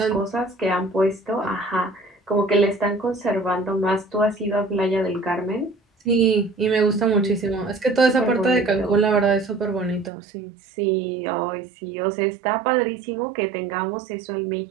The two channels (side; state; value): left; drops out; at 10.1 s